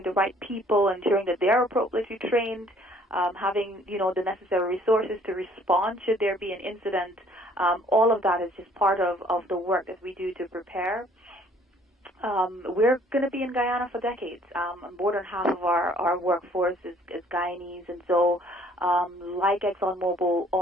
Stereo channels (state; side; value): normal; both; correlation 0.59